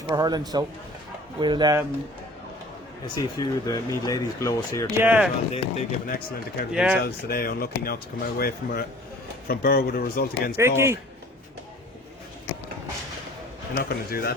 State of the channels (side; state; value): both; normal; correlation 0.48